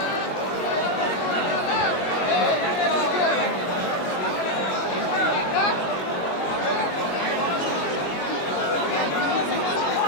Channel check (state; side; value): late; right; 22 ms